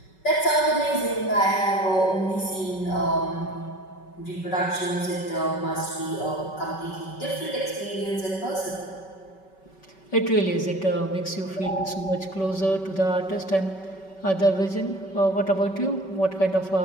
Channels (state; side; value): late; right; 5.3 ms